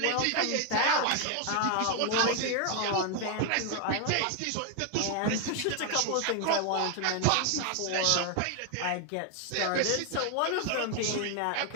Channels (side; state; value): both; different; correlation 0.00